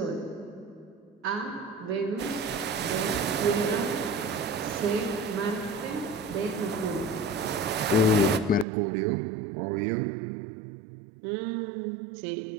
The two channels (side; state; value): left; drops out; at 8.7 s